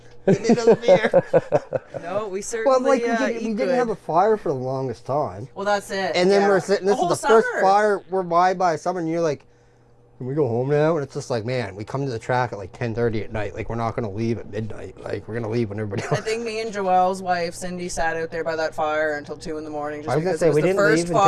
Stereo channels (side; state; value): both; identical; correlation 1.00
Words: Give me another beer. No, we Well, certainly like eat we didn't good. have a fire for the longest time. Well, that's it. And then yeah. we're sitting, this The is the whole first summer. fire we're by summer, and you're like, can we go home now? And it's just like, man, we come to the track at like 10:30 at night. Like, we're not going to leave at midnight. Like, we're going to leave when everybody I else. think me and Joelle's wife, Cindy, sat out there by that fire until 2 in the morning. Just I was gonna because say, it was we the didn't first leave